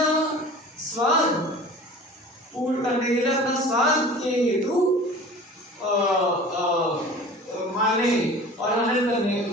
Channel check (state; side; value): normal; both; correlation 0.41